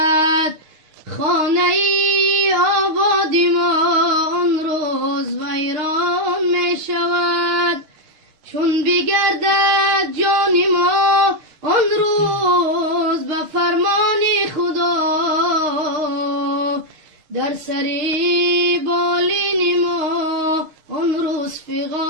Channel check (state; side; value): late; left; 6.5 ms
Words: خانه ای آبادی ما آن روز ویران می شود. چون بگردد جان ما آن روز به فرمان خدا، در سری بالین ما آن روز